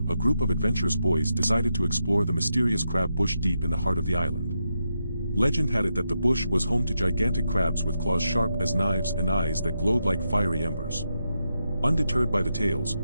a group of adventurous boys decided to explore the mysterious crab bush deep in the heart of the island. Legend had it that the bush was home to gigantic crabs with claws sharp as knives and eyes that glowed like fiery embers. Undeterred by the tales,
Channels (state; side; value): inverted; both; correlation -0.85